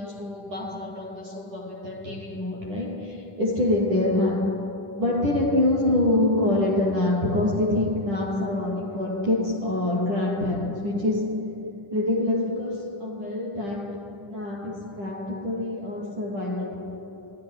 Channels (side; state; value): left; late; 10 ms